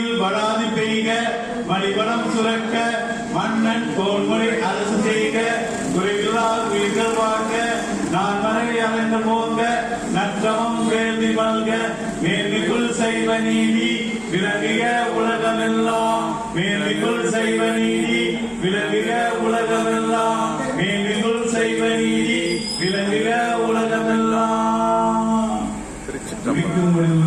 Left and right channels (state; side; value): identical; both; correlation 1.00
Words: வராது பெய்க, மணிவளம் சுரக்க, மன்னன் கோன்முறை அரசு செய்க, குறைவில்லா உயிர்கள் வாழ்க, நான் மனைவி அமைந்து போங்க, நற்றமம் வேள்வி மல்க, மேன்மைக்குள் செய்வ நீதி விளங்குக உலகமெல்லாம், மேன்மைக்குள் செய்வ நீதி விளங்குக உலகமெல்லாம், மேன்மைக்குள் செய்வ நீதி விளங்குக உலகமெல்லாம்.